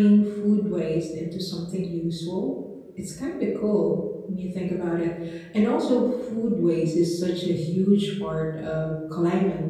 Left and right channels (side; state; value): both; identical; correlation 1.00